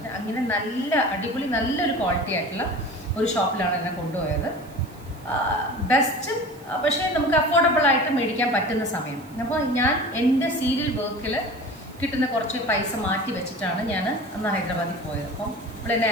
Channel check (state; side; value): noise; right; hiss, 25 dB below the sound